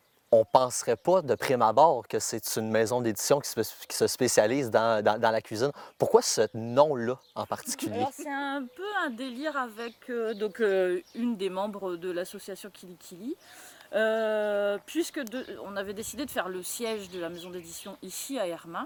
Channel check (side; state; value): both; identical; correlation 1.00